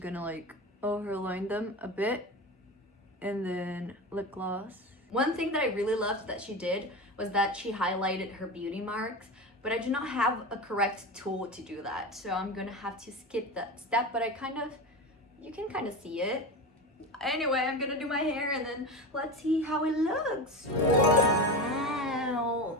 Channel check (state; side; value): normal; both; correlation 0.24